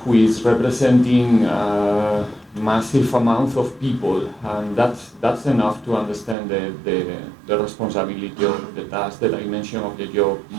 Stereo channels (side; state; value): left; drops out; at 6.4 s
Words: is representing a massive amount of people, and that's enough to understand the responsibility of the task, the dimension of the job,